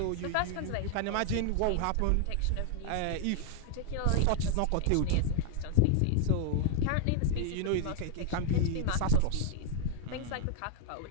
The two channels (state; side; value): different; both; correlation 0.00